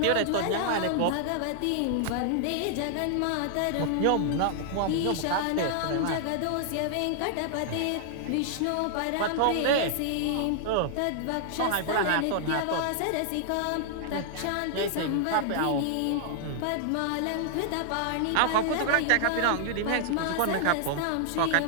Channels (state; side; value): different; both; correlation -0.01